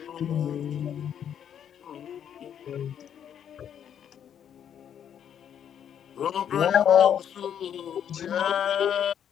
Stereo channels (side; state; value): right; quieter; 9.1 dB